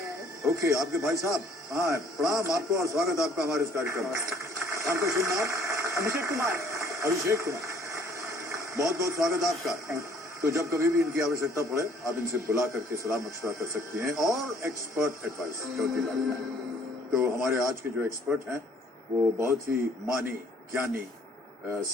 है। ओके, आपके भाई साहब। हाँ, प्रणाम आपको और स्वागत आपका हमारे इस कार्यक्रम में। आपका शुभ नाम? अभिषेक कुमार। अभिषेक कुमार, बहुत बहुत स्वागत आपका। तो जब कभी भी इनकी आवश्यकता पड़े आप इनसे बुला करके सलाह मशवरा कर सकती हैं और एक्सपर्ट एडवाइस चौथी लाइफलाइन। तो हमारे आज के जो एक्सपर्ट हैं वो बहुत ही मानी ज्ञानी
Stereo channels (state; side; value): normal; both; correlation 0.59